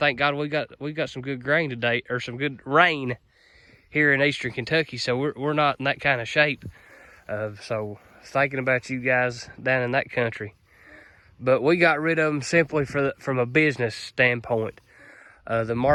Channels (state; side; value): identical; both; correlation 1.00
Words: God we got some good grain today, or some good rain here in eastern Kentucky, so we're not in that kind of shape. So thinking about you guys down in that country. But we got rid of them simply from a business standpoint. The